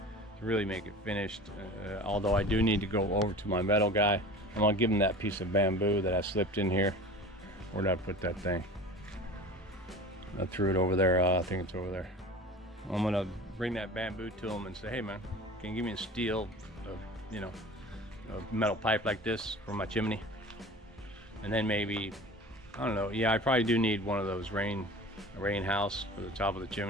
to really make it finished. Although I do need to go over to my metal guy. I'm gonna give him that piece of bamboo that I slipped in here. Where did I put that thing? I threw it over there. I think it's over there. I'm gonna bring that bamboo to him and say, hey man, can you give me a steel, you know, a metal pipe like this for my chimney? And then maybe, I don't know, yeah, I probably do need one of those rain house for the top of the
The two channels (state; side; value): normal; both; correlation 0.38